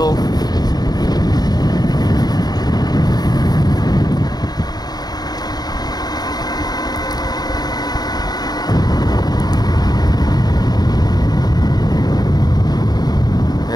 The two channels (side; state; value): right; late; 0.19 ms